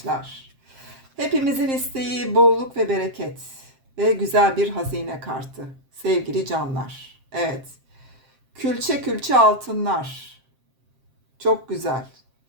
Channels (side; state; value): left; late; 7.6 ms